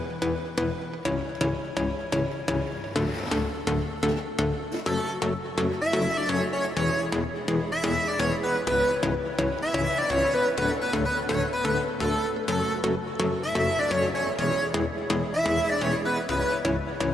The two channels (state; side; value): normal; both; correlation 0.84